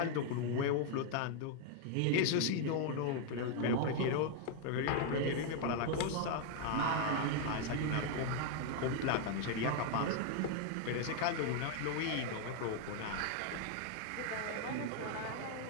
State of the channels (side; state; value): both; different; correlation 0.00